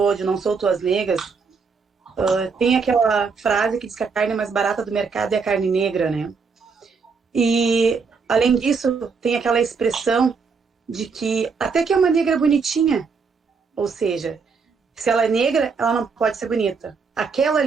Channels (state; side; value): quieter; left; 5.1 dB